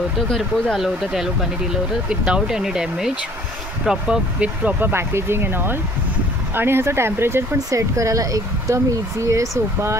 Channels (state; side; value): normal; both; correlation 0.55